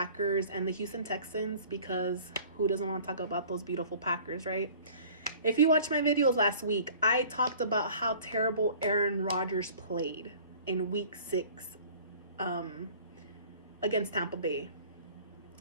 and the Houston Texans, because who doesn't want to talk about those beautiful Packers, right? If you watched my videos last week, I talked about how terrible Aaron Rodgers played in week 6 against Tampa Bay.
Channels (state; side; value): inverted; both; correlation -0.48